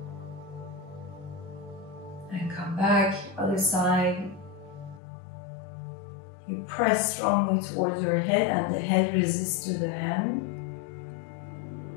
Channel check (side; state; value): right; drops out; at 5.0 s